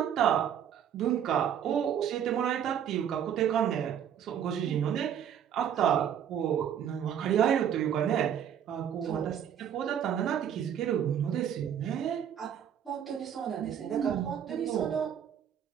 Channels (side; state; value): left; quieter; 9.2 dB